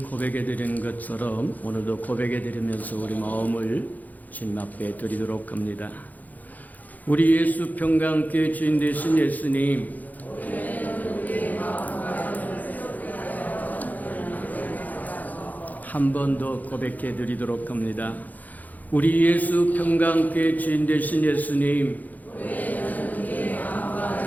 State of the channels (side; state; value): right; late; 0.081 ms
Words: 드린 것처럼 오늘도 고백해 드리면서 우리 마음을 주님 앞에 드리도록 합니다. 우리 예수 평강교회 주인 되신 예수님, 한 번 더 고백해 드리도록 합니다. 우리 예수 평강교회 주인 되신 예수님,